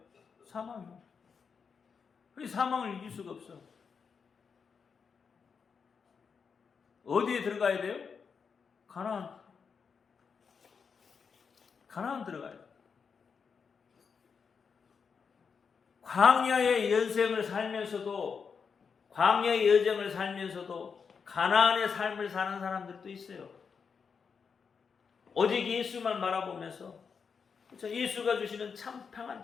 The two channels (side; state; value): right; quieter; 5.9 dB